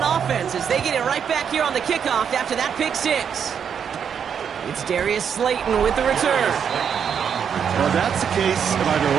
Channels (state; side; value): quieter; left; 7.6 dB